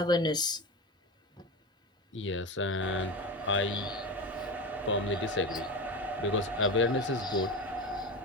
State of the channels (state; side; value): normal; both; correlation 0.24